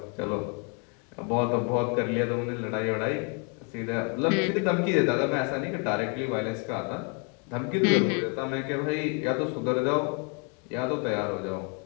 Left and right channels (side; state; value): right; quieter; 35.2 dB